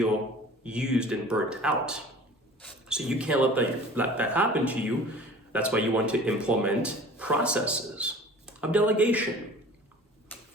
used and burnt out. So you can't let that happen to you. That's why you want to implement processes of delegation.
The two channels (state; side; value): normal; both; correlation 0.44